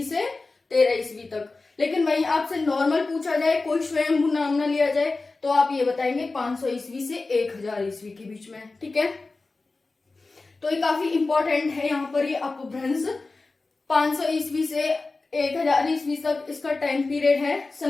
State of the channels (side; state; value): right; quieter; 3.6 dB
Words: से 13 ईस्वी तक। लेकिन वहीं आपसे नॉर्मल पूछा जाए, कोई स्वयंभू नाम ना लिया जाए, तो आप ये बताएंगे 500 ईस्वी से 1000 ईस्वी के बीच में। ठीक है, तो ये काफी इंपॉर्टेंट है यहाँ पर, ये अपभ्रंश 500 ईस्वी से 1000 ईस्वी तक इसका टाइम पीरियड है।